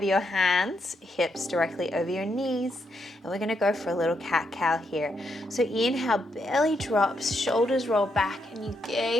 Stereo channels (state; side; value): normal; both; correlation 0.79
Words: your hands, hips directly over your knees, and we're going to go for a little cat-cow here. So inhale, belly drops, shoulders roll back, and you